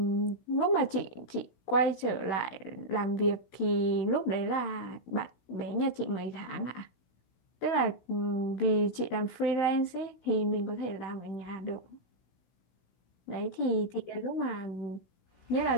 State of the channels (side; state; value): right; late; 16 ms